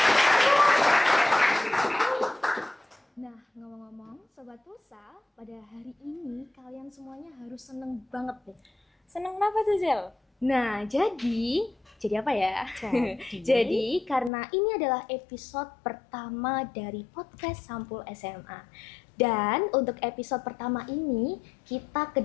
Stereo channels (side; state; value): right; drops out; at 14.3 s